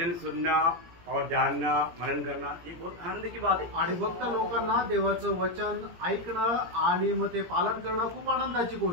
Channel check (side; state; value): left; late; 17 ms